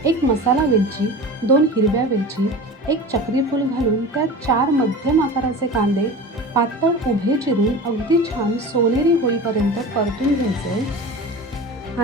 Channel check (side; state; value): both; normal; correlation 0.33